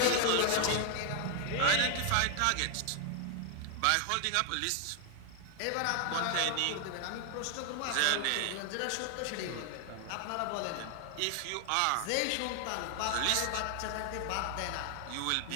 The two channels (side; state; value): both; different; correlation 0.00